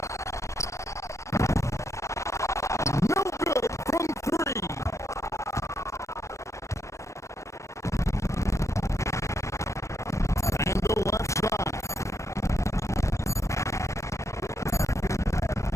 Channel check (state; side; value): late; right; 0.15 ms